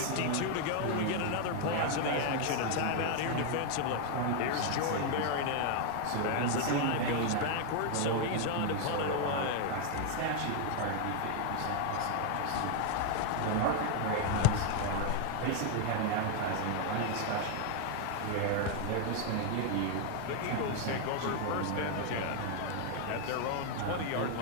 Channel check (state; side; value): different; both; correlation 0.00